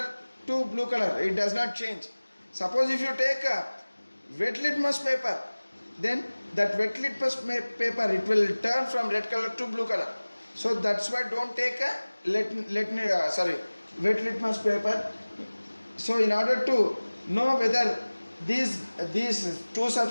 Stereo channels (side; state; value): both; inverted; correlation -1.00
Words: to blue color, it does not change. Suppose if you take a wet litmus paper, then that wet litmus paper, it will turn from red color to blue color. So that's why don't take a wet litmus paper. So in order to know whether these two